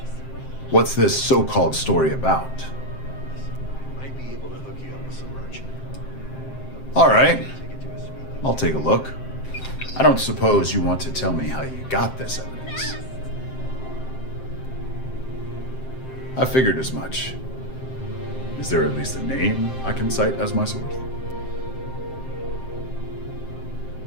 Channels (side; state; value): right; late; 7.6 ms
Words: What's this so-called story about? Might be able to hook you up with some merchant. All right. I'll take a look. I don't suppose you want to tell me how you got this evidence. I figured as much. Is there at least a name I can cite as my source?